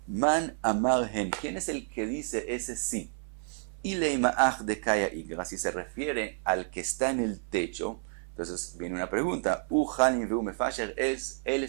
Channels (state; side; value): silent; left; 58 dB below the other